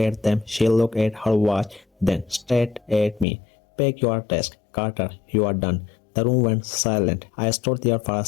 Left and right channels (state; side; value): drops out; right; at 3.2 s